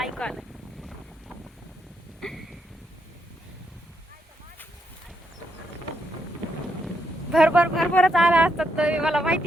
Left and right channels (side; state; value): both; normal; correlation 0.79